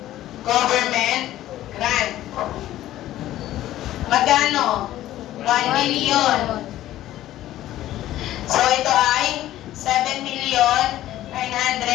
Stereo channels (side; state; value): right; quieter; 14.0 dB